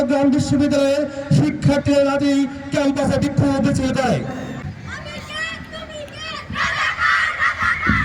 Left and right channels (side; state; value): both; identical; correlation 1.00